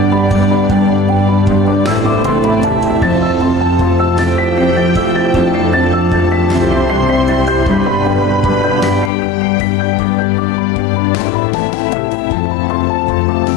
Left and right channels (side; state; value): right; drops out; at 9.1 s